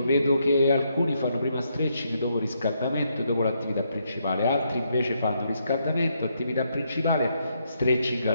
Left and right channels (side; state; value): both; inverted; correlation -0.77